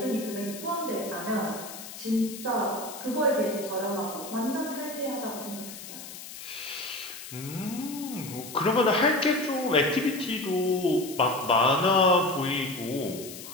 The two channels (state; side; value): noise; left; hiss, 12 dB below the sound